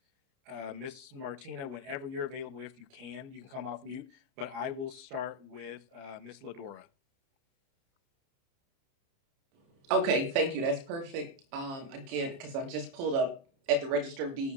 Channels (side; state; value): left; late; 30 ms